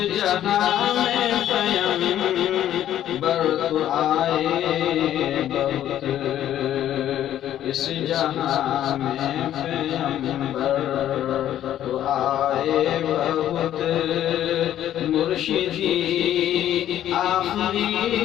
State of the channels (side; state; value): right; quieter; 11.6 dB